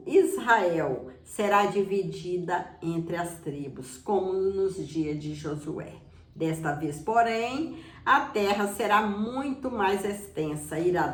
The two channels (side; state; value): both; identical; correlation 1.00